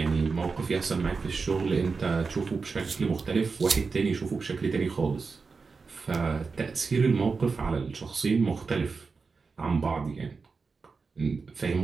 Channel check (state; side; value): quieter; left; 4.7 dB